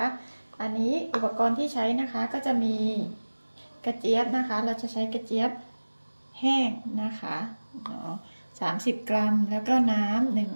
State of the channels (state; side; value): inverted; both; correlation -1.00